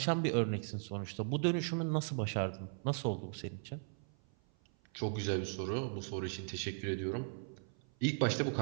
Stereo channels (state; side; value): silent; left; 53 dB below the other